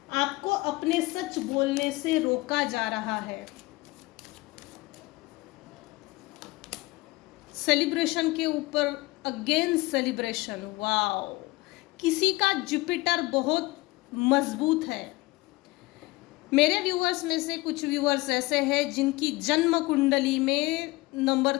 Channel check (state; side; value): quieter; right; 21.4 dB